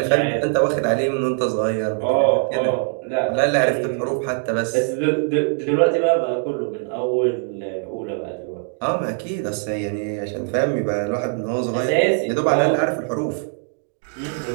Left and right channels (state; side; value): silent; left; 61 dB below the other